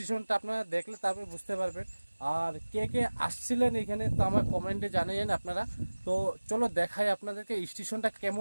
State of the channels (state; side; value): inverted; both; correlation -1.00